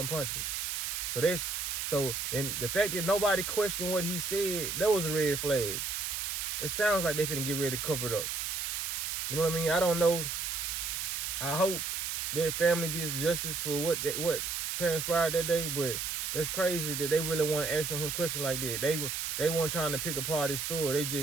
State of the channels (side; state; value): right; noise; hiss, 2 dB below the sound